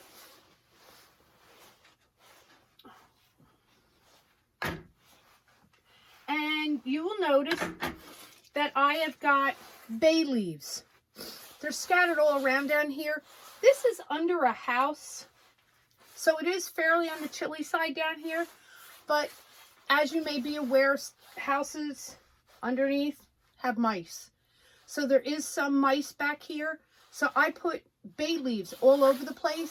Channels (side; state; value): both; identical; correlation 1.00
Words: And you will notice that I have got bay leaves. They're scattered all around down here. This is under a house, so it is fairly on the chilly side down here. But as you may be aware, houses underneath have mice. So there is some mice back here. So I put bay leaves all over the